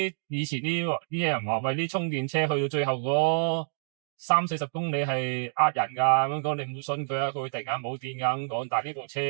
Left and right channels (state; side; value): silent; left; digital silence